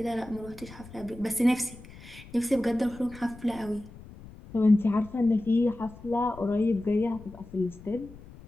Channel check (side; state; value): left; noise; rumble, 18 dB below the sound